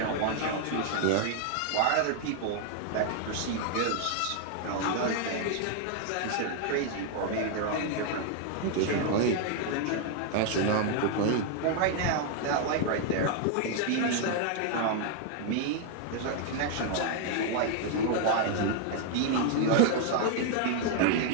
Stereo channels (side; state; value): both; different; correlation 0.00